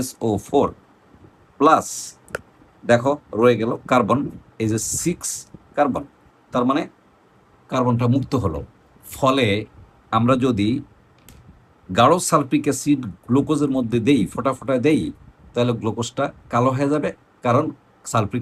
SO4 প্লাস, দেখো রয়ে গেল কার্বন, এই যে 6 কার্বন। তার মানে কার্বনটা মুক্ত হলো। ফলে আমরা যদি গাঢ় সালফ্রিক অ্যাসিড গ্লুকোজের মধ্যে দেই, ফোটা ফোটা দেই, তাহলে গ্লুকোজটা কালো হয়ে যাবে, কারণ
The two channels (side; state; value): both; identical; correlation 1.00